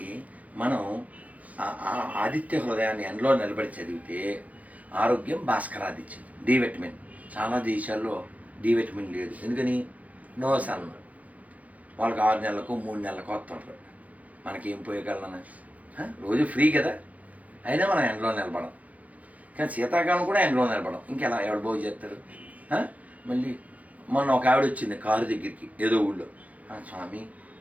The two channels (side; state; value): left; late; 0.072 ms